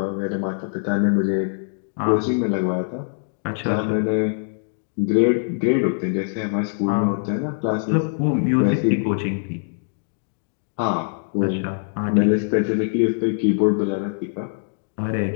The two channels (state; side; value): silent; right; digital silence